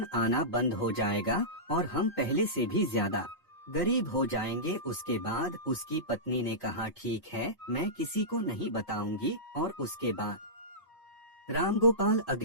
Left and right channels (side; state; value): both; normal; correlation -0.17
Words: आना बंद हो जाएगा और हम पहले से भी ज्यादा गरीब हो जाएंगे। उसके बाद उसकी पत्नी ने कहा ठीक है, मैं किसी को नहीं बताऊंगी। और उसके बाद रामगोपाल